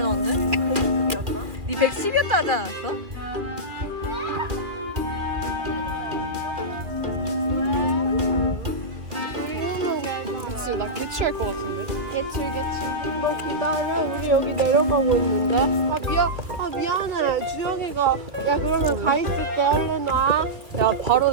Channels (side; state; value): left; late; 2.5 ms